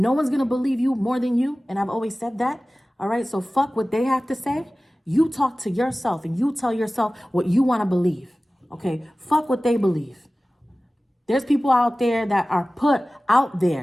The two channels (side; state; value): both; normal; correlation 0.97